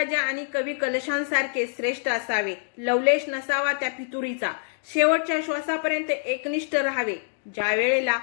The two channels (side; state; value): right; silent; digital silence